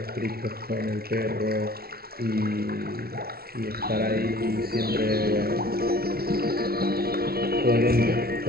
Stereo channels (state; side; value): late; left; 0.44 ms